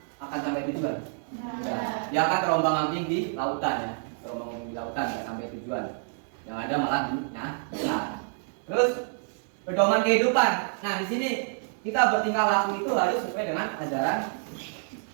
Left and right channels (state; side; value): silent; left; digital silence